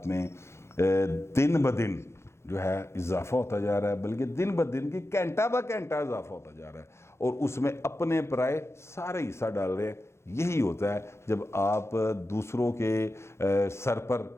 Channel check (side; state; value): right; late; 0.13 ms